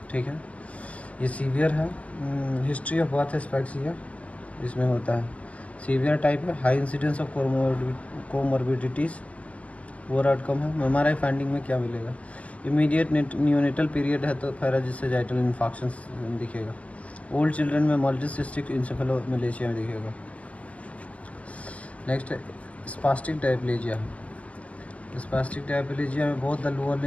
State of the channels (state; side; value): late; right; 0.069 ms